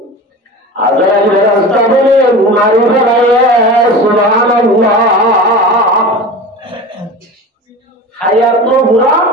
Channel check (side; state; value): both; normal; correlation 0.32